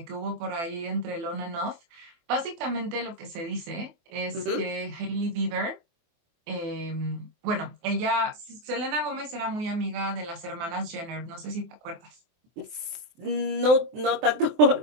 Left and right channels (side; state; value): left; late; 24 ms